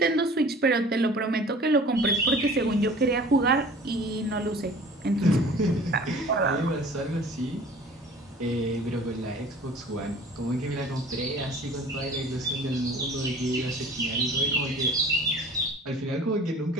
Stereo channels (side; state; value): both; normal; correlation 0.46